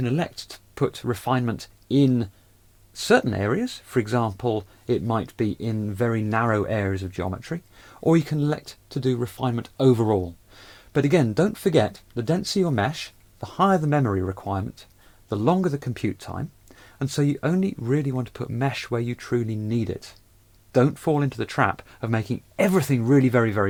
elect to put refinement in certain areas. For example, it might be in very narrow areas of geometry, or you can elect to do refinement overall. But again, don't forget, the denser your mesh, the higher the memory requirement, the longer the compute time, and so you only really want to put mesh where you truly need it. Don't fall into the trap of making everything really very,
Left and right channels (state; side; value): identical; both; correlation 1.00